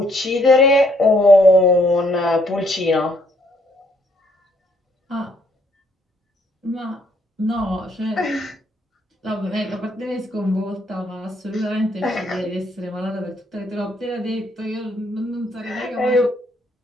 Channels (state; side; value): normal; both; correlation 0.68